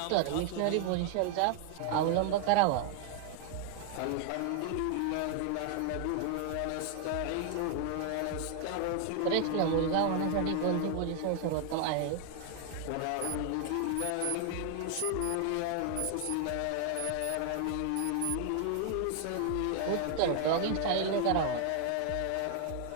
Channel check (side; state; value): both; different; correlation 0.00